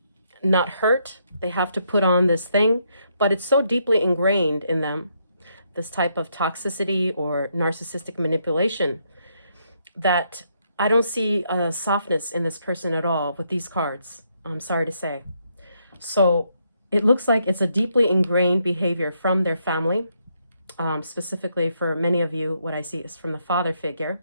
not hurt, they have to put on this thing. But it's so deeply ingrained in them, this type of toxicity or narcissistic manipulation, that I don't see a softness in this person at all with these cards, I'm sorry to say. So it looks like it's a deeply ingrained behavior from their family. Specifically for many of you, what I see is from the father figure.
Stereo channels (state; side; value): inverted; both; correlation -0.75